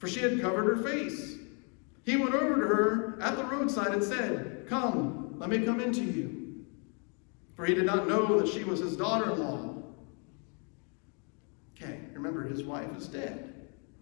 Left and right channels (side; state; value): right; quieter; 37.5 dB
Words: she had covered her face. He went over to her at the roadside and said, come, let me come into you. For he did not know that she was his daughter-in-law. Okay, remember, his wife is dead.